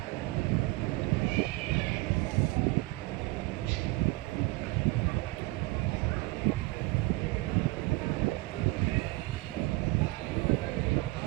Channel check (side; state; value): left; quieter; 21.8 dB